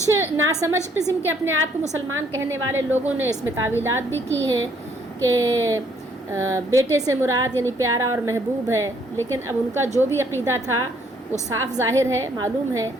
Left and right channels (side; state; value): both; normal; correlation 0.66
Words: ناسمجھ قسم کے اپنے آپ کو مسلمان کہنے والے لوگوں نے اس میں تعویلات بھی کی ہیں کہ بیٹے سے مراد یعنی پیارا اور محبوب ہے، لیکن اب ان کا جو بھی عقیدہ تھا وہ صاف ظاہر ہے، معلوم ہے۔